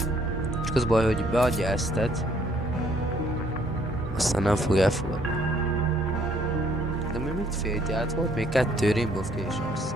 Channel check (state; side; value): normal; both; correlation 0.65